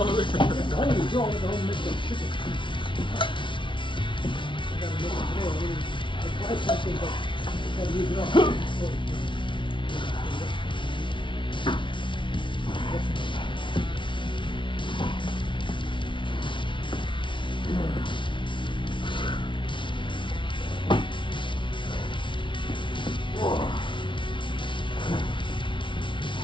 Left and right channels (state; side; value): late; right; 0.24 ms